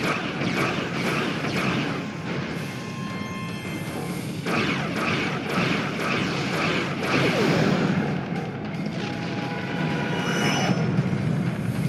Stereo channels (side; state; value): both; identical; correlation 1.00